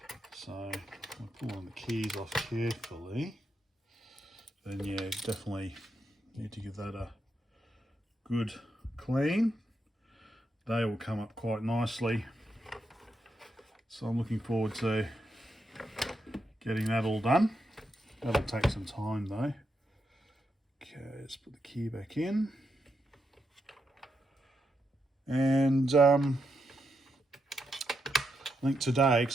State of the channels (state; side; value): normal; both; correlation 0.83